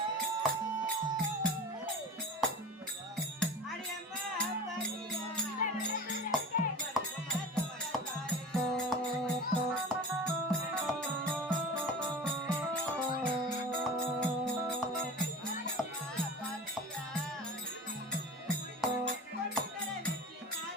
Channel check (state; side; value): normal; both; correlation 0.35